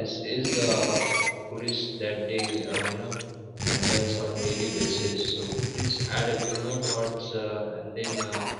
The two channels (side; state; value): both; identical; correlation 1.00